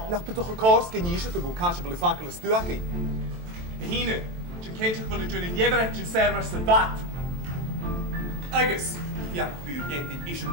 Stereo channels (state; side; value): late; left; 23 ms